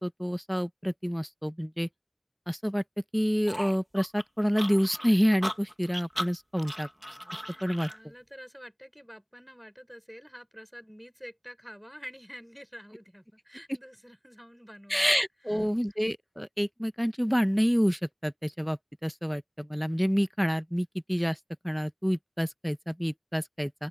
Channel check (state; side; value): identical; both; correlation 1.00